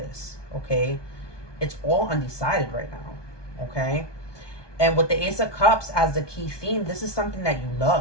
okay? It's all undecided right now, okay? And with the Ace of Cups as the key theme, this is something that you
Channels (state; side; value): late; right; 1.2 ms